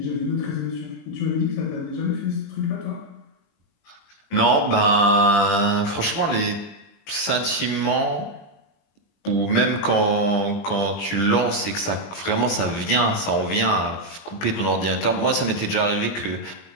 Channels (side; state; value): right; late; 20 ms